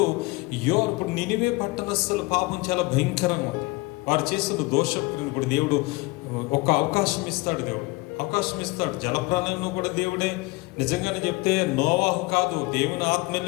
నినివే పట్టణస్థుల పాపం చాలా భయంకరంగా ఉంది. వారు చేసిన దోషక్రియను కూడా దేవుడు ఒక అవకాశం ఇస్తాడు. దేవుడు అవకాశం ఇస్తాడు. జలప్రలయంలో కూడా దేవుడే నిజంగానే చెప్తే నోవాహు కాదు, దేవుని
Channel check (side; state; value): right; quieter; 23.6 dB